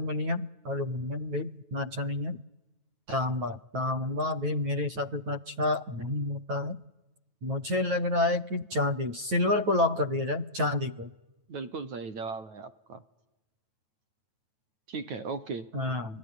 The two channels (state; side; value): late; left; 9.2 ms